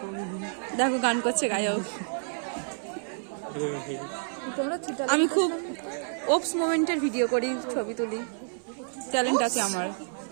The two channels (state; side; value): silent; left; 58 dB below the other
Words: দেখো গান করছে গায়ক। আমি খুব ওপস মোমেন্টের ভিডিও করি, ছবি তুলি, ট্যালেন্ট আছে আমার।